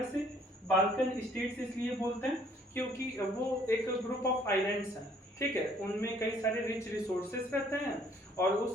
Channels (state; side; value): normal; both; correlation 0.61